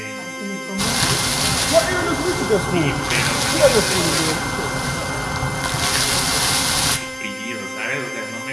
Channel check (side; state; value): both; identical; correlation 1.00